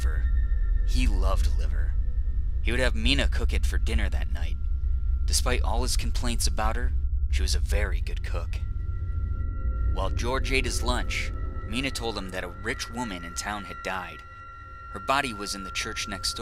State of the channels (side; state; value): both; identical; correlation 1.00